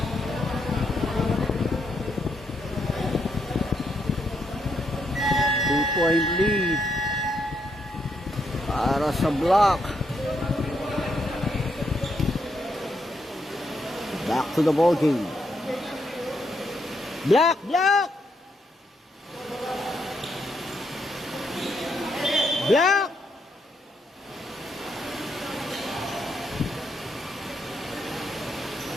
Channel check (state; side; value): normal; both; correlation 0.78